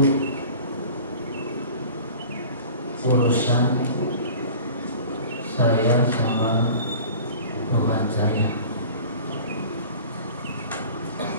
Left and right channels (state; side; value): inverted; both; correlation -0.42